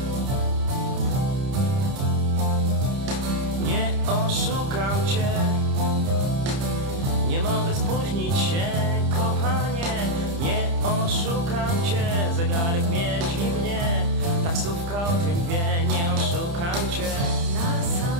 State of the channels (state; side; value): late; left; 30 ms